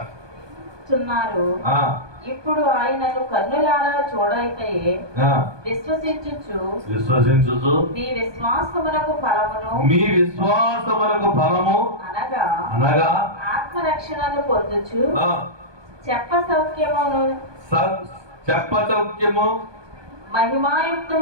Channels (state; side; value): late; left; 1.2 ms